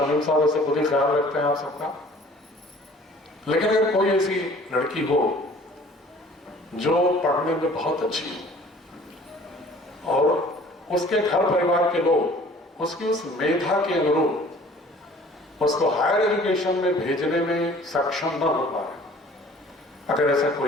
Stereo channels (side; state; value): both; normal; correlation 0.51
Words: साहब ऐसे खुद ही ख्याल रखते हैं आप सबका, लेकिन अगर कोई ऐसी लड़की हो जो पढ़ने में बहुत अच्छी हो और उसके घर परिवार के लोग उसकी उस मेधा के अनुरूप उसको हायर एजुकेशन में भेजने में सक्षम न हो पाए, अगर ऐसा